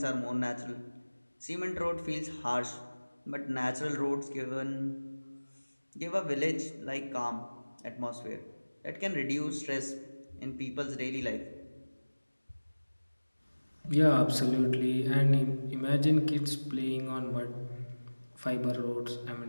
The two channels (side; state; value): both; inverted; correlation -1.00